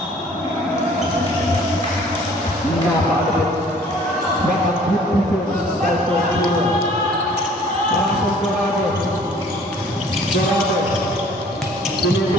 Napakabit. Dapat dito sa ito. Pasok Dorado. Dorado.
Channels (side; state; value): both; normal; correlation 0.54